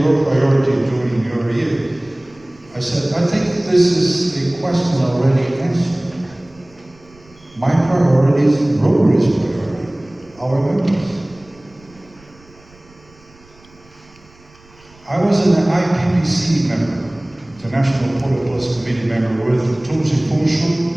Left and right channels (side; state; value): right; noise; rumble, 27 dB below the sound